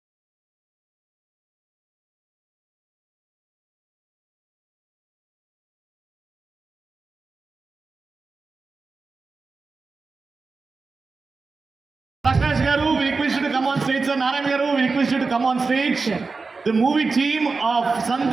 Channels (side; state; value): left; quieter; 4.2 dB